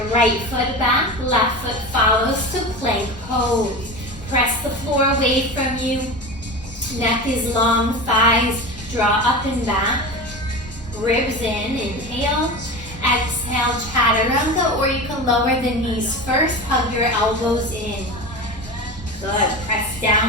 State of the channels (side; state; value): both; normal; correlation 0.28